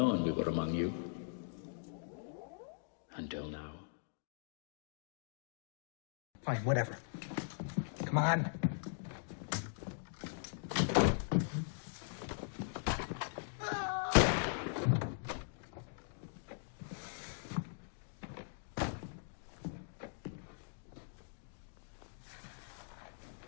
we were among you, until now. Fine, whatever. Come on.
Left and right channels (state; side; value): silent; right; digital silence